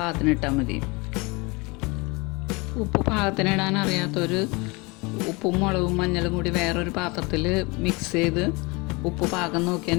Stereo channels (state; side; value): quieter; right; 26.5 dB